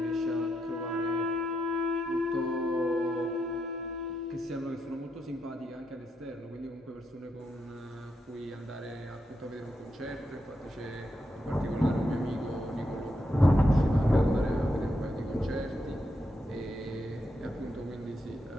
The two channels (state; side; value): normal; both; correlation 0.83